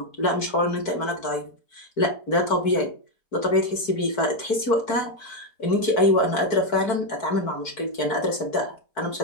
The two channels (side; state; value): right; late; 4.5 ms